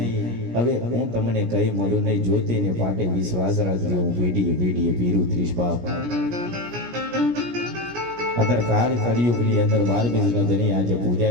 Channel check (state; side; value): late; left; 17 ms